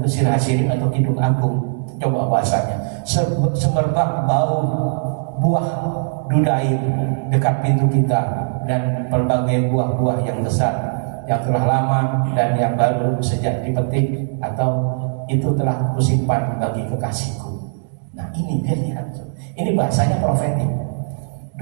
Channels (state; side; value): silent; left; digital silence